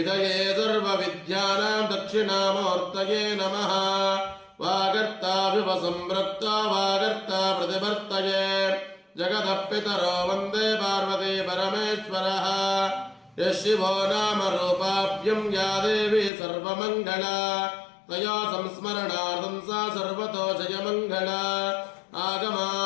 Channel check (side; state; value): right; drops out; at 16.3 s